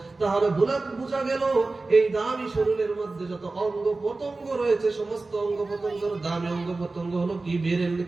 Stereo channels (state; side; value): quieter; left; 3.4 dB